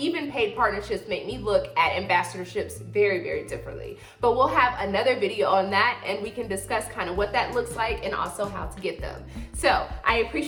paid partnerships make me look at ambassadorships very, very differently. But we'll have another video on that, and we can discuss kind of what that looks like and also how to get them. So I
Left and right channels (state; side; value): identical; both; correlation 1.00